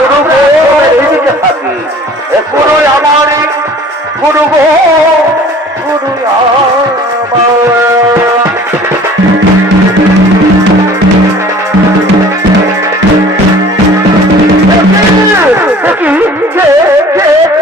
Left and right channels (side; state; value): both; normal; correlation 0.48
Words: এইদিকে থাকি। গুরু আমার গুরু গুরু